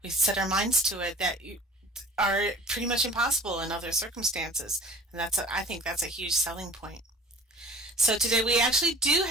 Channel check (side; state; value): both; normal; correlation 0.46